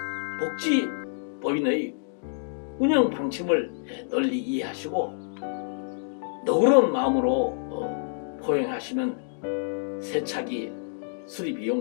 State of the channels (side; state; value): right; silent; digital silence